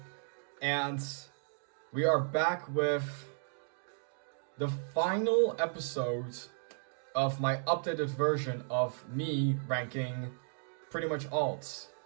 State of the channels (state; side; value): silent; left; digital silence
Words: and we are back with the final episode of my updated version of me ranking pretty much alts.